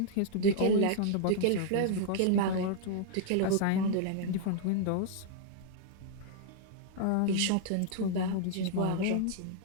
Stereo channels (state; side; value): different; both; correlation -0.01